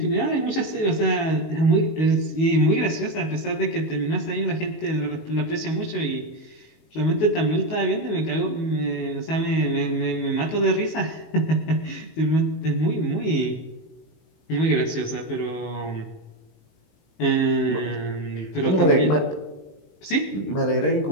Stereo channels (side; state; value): right; late; 19 ms